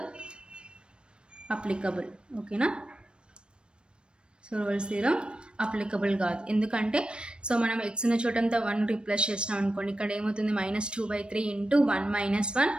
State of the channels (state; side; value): late; left; 0.055 ms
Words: applicable. ఓకేనా? So Rolle's theorem applicable కాదు. ఎందుకంటే so మనం x ఉన్న చోటంతా 1 replace చేసినాం అనుకోండి, ఇక్కడ ఏమవుతుంది minus 2 by 3 into 1 minus 1